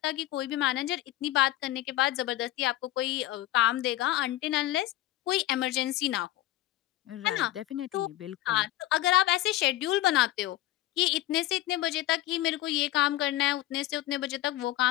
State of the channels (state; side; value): quieter; right; 15.4 dB